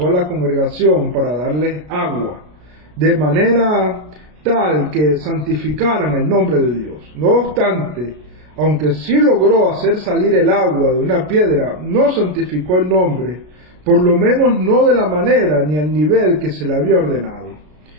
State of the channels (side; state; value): left; late; 33 ms